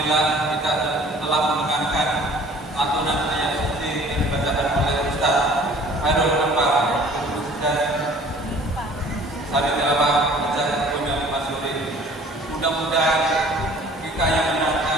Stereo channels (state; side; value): normal; both; correlation 0.51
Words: kita telah mendengarkan lantunan ayat suci yang dibacakan oleh Ustaz Hairul Anwar dan Sari Tilawah Ustaz Bunda Masuri. Mudah-mudahan kita yang